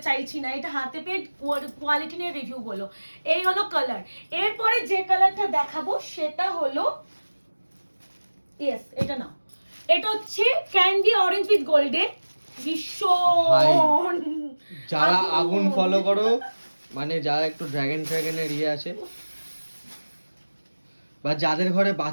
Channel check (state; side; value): inverted; both; correlation -1.00